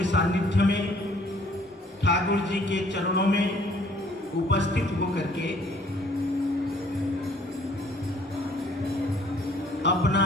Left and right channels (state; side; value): normal; both; correlation 0.59